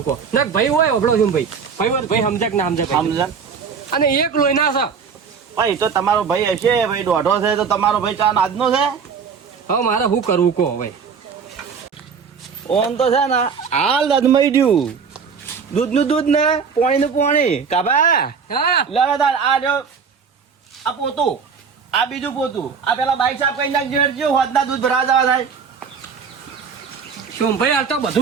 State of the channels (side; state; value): left; quieter; 6.1 dB